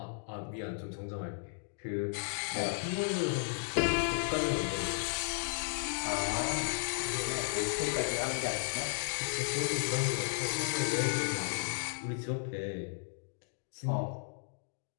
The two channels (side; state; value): right; silent; digital silence